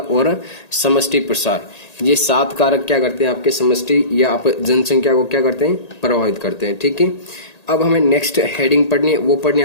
समष्टि प्रसार। ये 7 कारक क्या करते हैं, आपके समष्टि या आप जनसंख्या को क्या करते हैं, प्रभावित करते हैं। ठीक है। अब हमें नेक्स्ट हेडिंग पढ़नी है, वो पढ़नी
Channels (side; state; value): right; late; 1.8 ms